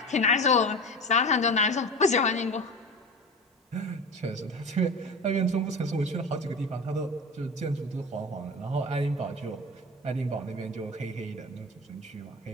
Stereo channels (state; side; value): normal; both; correlation 0.31